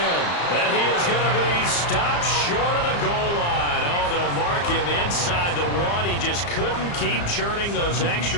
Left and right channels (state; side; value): late; right; 35 ms